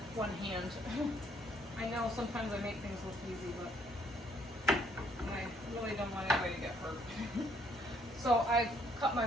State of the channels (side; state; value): both; normal; correlation 0.66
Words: one hand. I know sometimes I make things look easy, but I really don't want anybody to get hurt. So I've cut